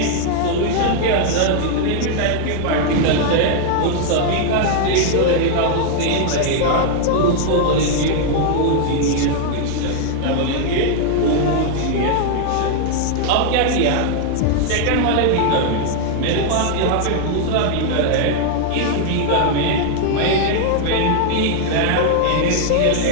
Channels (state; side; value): different; both; correlation 0.00